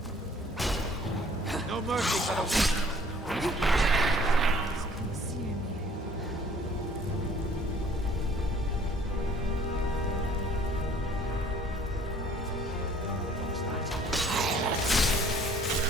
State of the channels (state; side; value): normal; both; correlation 0.55